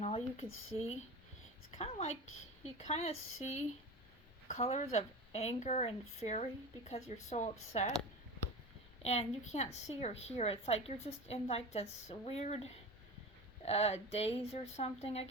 all you can see. It's kind of like you kind of see colors of anger and fury because you're so upset. And you can't see or hear. It's like you're just in like this weird daze or something, I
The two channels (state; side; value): normal; both; correlation 0.29